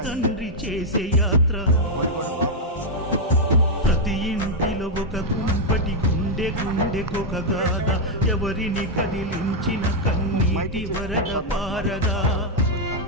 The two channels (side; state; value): both; normal; correlation -0.01